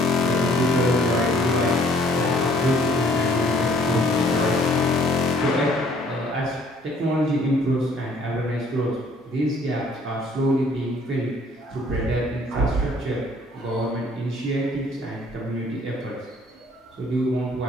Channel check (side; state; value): both; normal; correlation 0.60